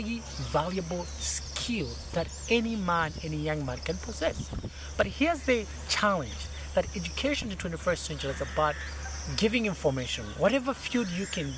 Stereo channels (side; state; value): both; identical; correlation 1.00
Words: valuable skill that any man, any young man can possess. But here's the challenge, that education in the 21st century is about giving information. Whatever field you can